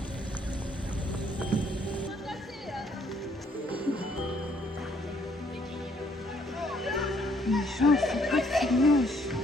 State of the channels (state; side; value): normal; both; correlation 0.67